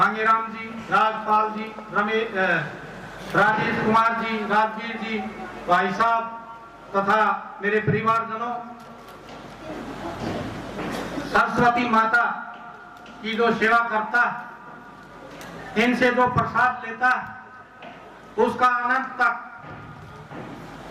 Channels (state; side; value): identical; both; correlation 1.00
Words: जी, राजपाल जी, राजेश कुमार जी, राजवीर जी, भाई साहब तथा मेरे परिवारजनों, सरस्वती माता की जो सेवा करता है, इनसे जो प्रसाद लेता है, उसका अनंत तक